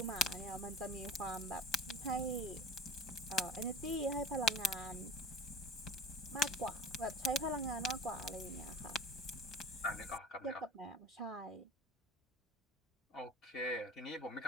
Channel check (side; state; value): both; normal; correlation 0.38